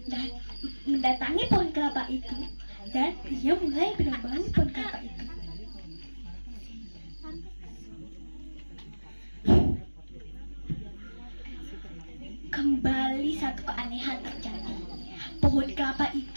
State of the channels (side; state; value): both; inverted; correlation -1.00